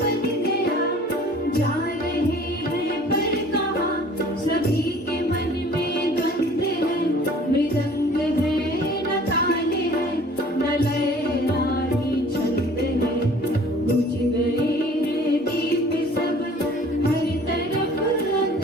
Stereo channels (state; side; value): normal; both; correlation 0.50